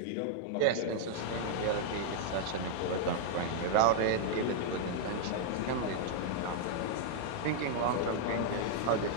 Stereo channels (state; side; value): different; both; correlation -0.01